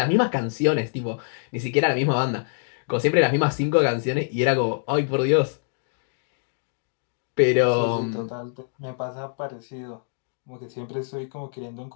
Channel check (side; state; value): right; silent; digital silence